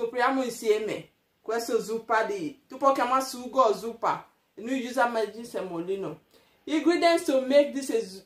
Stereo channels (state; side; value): identical; both; correlation 1.00